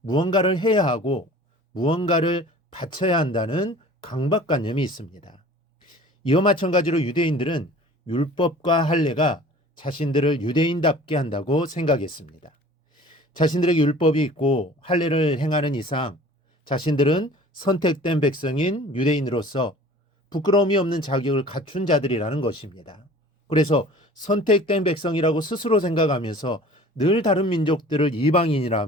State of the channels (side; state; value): both; normal; correlation 0.46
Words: 해야 하고 무언가를 바쳐야 한다는 강박관념이 있습니다. 이와 마찬가지로 유대인들은 율법과 할례가 자신들을 유대인답게 한다고 생각했습니다. 자신들에게 율법이 있고 할례를 행하는 이상 자신들은 선택된 백성인 유대인으로서 부끄러움이 없는 자격을 갖춘 자들이라는 것입니다. 그래서 선택된 백성이라고 스스로 생각하면서 늘 다른 민족들을